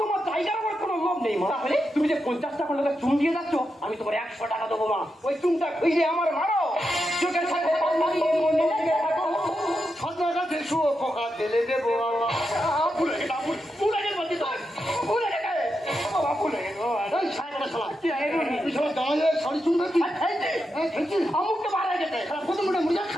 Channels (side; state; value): both; normal; correlation 0.86